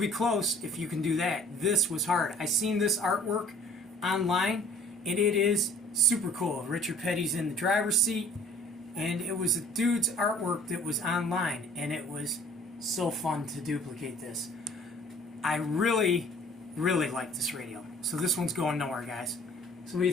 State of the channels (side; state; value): both; normal; correlation 0.53